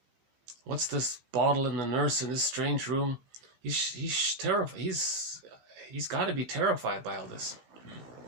What's this bottle and the nurse in this strange room? He's terrified. He's got to be terrified by all this.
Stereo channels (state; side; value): late; left; 15 ms